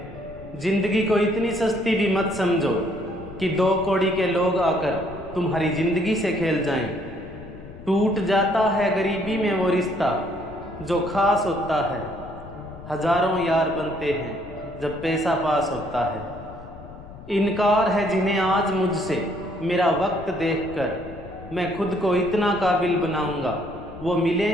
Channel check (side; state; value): left; noise; rumble, 16 dB below the sound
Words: जिंदगी को इतनी सस्ती भी मत समझो कि 2 कौड़ी के लोग आकर तुम्हारी जिंदगी से खेल जाएं। टूट जाता है गरीबी में वो रिश्ता जो खास होता है। हजारों यार बनते हैं जब पैसा पास होता है। इनकार है जिन्हें आज मुझसे मेरा वक्त देखकर, मैं खुद को इतना काबिल बनाऊंगा वो